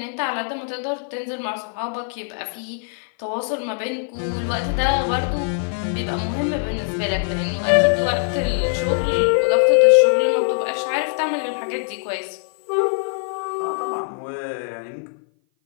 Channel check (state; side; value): silent; right; 57 dB below the other